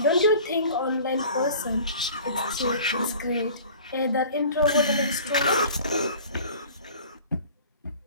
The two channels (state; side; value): inverted; both; correlation -0.45